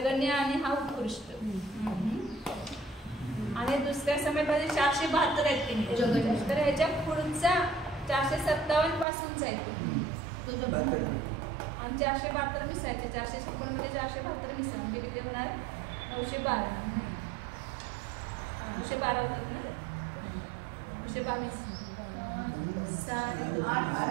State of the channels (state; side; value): drops out; left; at 9.1 s